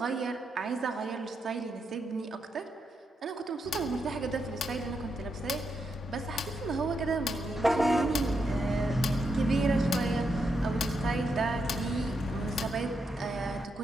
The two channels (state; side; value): normal; both; correlation 0.83